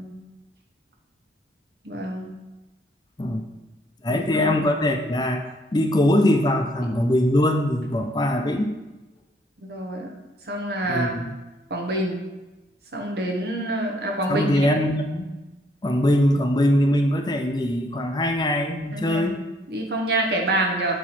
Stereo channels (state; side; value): normal; both; correlation 0.66